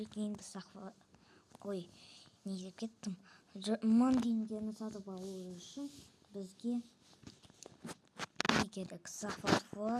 Ой, не деп кеттім. 1000 теңгені сатып алу үшін бізге не керек? Захват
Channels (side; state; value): both; identical; correlation 1.00